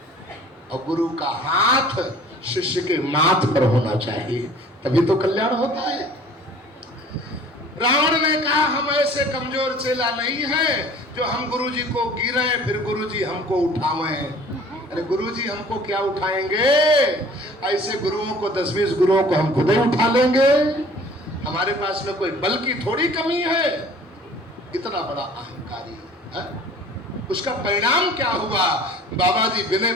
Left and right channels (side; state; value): both; normal; correlation 0.49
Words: और गुरु का हाथ शिष्य के माथ पर होना चाहिए, तभी तो कल्याण होता है। रावण ने कहा हम ऐसे कमजोर चेला नहीं है जो हम गुरुजी को गिराए फिर गुरुजी हमको उठावे। अरे गुरुजी हमको क्या उठाएंगे? ऐसे गुरुओं को 10-20 गुरुओं को हम खुद ही उठा लेंगे। हमारे पास में कोई बल की थोड़ी कमी है। इतना बड़ा अहंकारी है। उसका परिणाम क्या हुआ? बाबा जी विनय